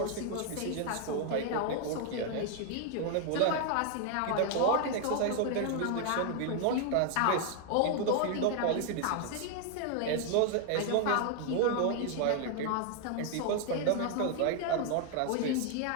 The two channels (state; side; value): different; both; correlation 0.00